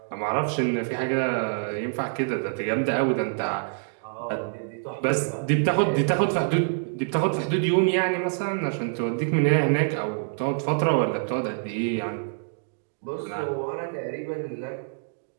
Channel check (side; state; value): left; silent; digital silence